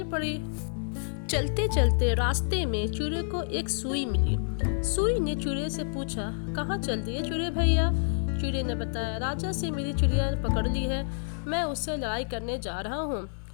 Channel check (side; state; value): right; silent; digital silence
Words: पड़ी। चलते चलते रास्ते में चिड़े को एक सुई मिली। सुई ने चिड़े से पूछा, कहाँ चल दिए चिड़े भैया? चिड़े ने बताया, राजा से मेरी चिड़िया पकड़ ली है, मैं उससे लड़ाई करने जा रहा हूँ।